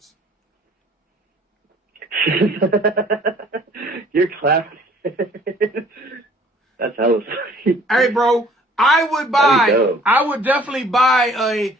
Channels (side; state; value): both; normal; correlation 0.55